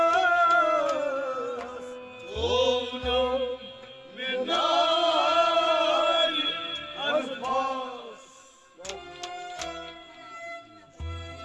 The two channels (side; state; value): both; identical; correlation 1.00